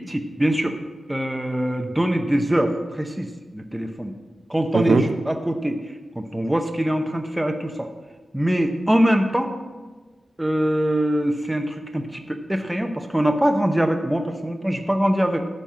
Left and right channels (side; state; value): both; normal; correlation 0.96